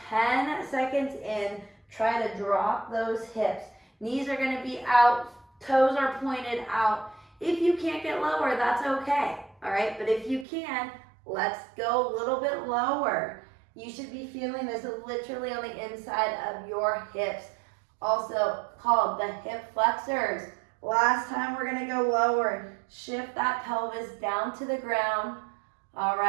10 seconds in. Try to drop those hips. Knees are gonna be out, toes are pointed out. If you can't get lower, that's okay, all right? But if you can, let's go a little bit lower. You should be feeling this literally on the inside of your hips, also called the hip flexors. Last time, we're gonna go lower. Shift that pelvis down to the ground. All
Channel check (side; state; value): left; drops out; at 10.5 s